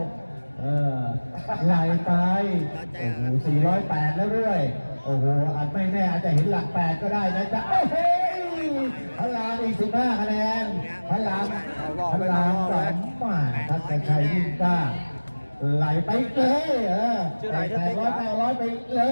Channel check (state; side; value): inverted; both; correlation -1.00